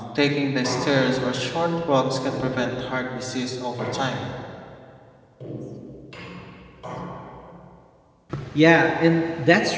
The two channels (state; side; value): identical; both; correlation 1.00